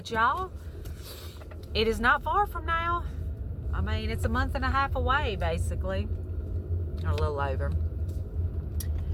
y'all, it is not far from now. I mean, it's a month and a half away, basically, or a little over.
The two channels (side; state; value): both; identical; correlation 1.00